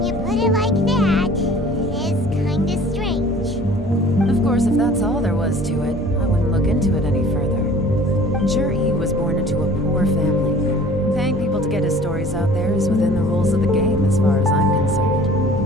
you put it like that, it is kinda strange. Of course, if that's all there was to it, I wouldn't look into it any further. Jur-E was born into a poor family. Paying people to get his stories out there is within the rules of the game as far as I'm concerned.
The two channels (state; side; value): normal; both; correlation 0.48